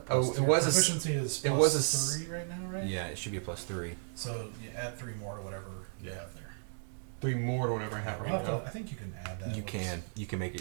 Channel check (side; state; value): left; silent; digital silence